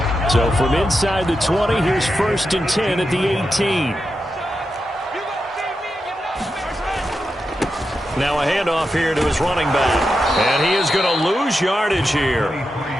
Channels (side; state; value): both; normal; correlation 0.88